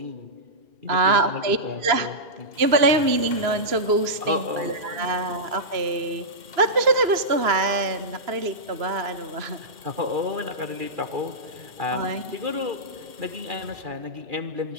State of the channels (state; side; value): late; left; 2.9 ms